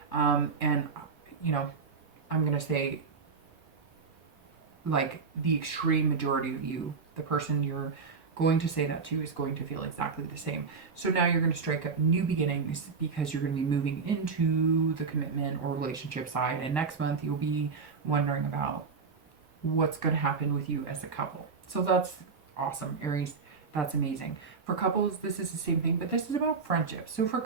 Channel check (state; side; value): quieter; left; 5.1 dB